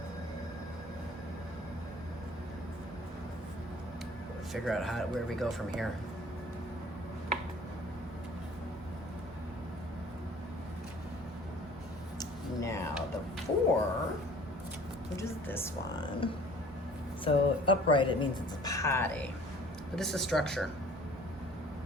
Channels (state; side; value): normal; both; correlation 0.50